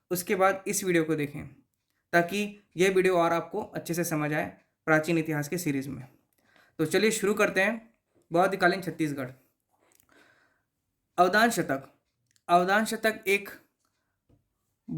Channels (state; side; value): identical; both; correlation 1.00